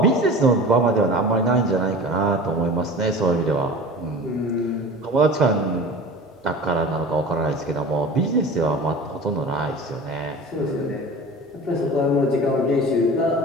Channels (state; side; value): normal; both; correlation 0.37